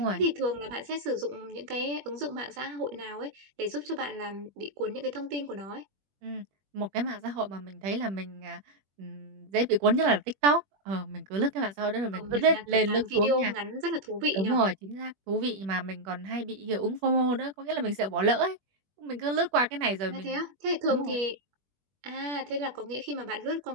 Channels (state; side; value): late; left; 21 ms